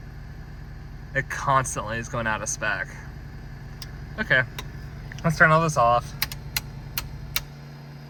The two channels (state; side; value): identical; both; correlation 1.00